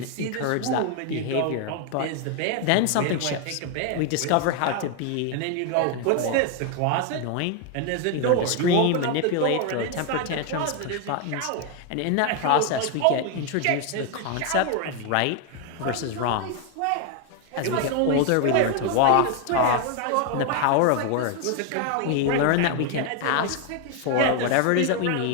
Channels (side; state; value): both; different; correlation 0.01